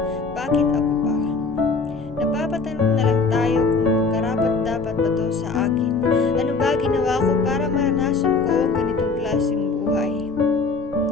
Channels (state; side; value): quieter; right; 4.2 dB